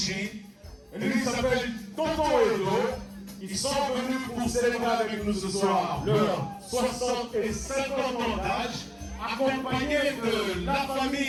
Et lui, il s'appelle Tonton Edo. Ils sont venus pour célébrer avec nous ce soir leurs 60 et 50 ans d'âge, accompagnés de la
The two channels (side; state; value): both; identical; correlation 1.00